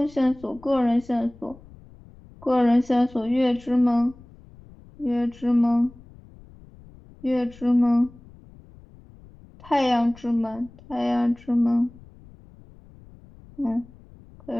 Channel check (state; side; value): noise; left; rumble, 23 dB below the sound